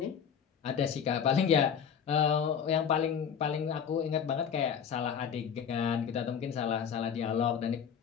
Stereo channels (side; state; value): right; quieter; 7.6 dB